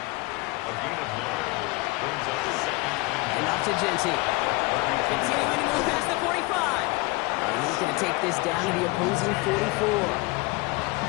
And off to Genty. Continuing to move past the 45. And he's going to take this down to the opposing 44.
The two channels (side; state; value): right; quieter; 24.0 dB